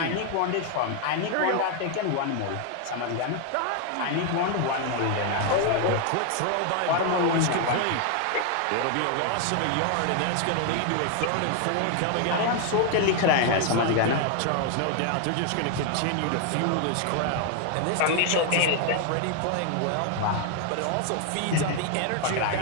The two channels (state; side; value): different; both; correlation 0.00